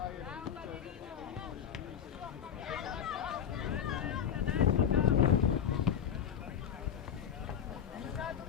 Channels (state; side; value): quieter; right; 8.4 dB